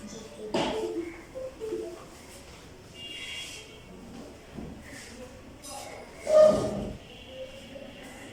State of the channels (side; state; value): both; identical; correlation 1.00